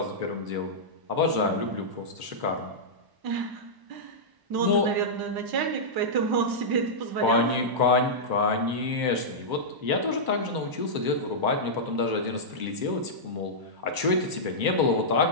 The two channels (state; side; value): late; left; 1.0 ms